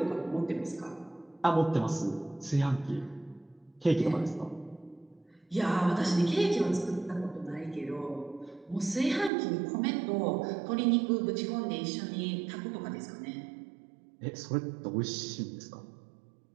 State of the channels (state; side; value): drops out; left; at 9.3 s